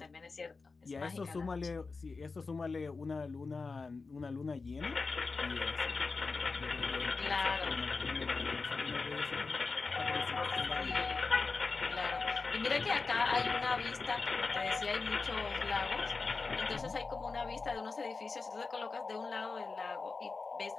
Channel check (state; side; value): quieter; right; 4.2 dB